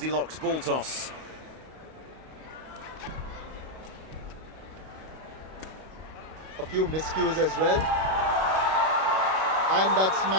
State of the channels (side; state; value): left; late; 31 ms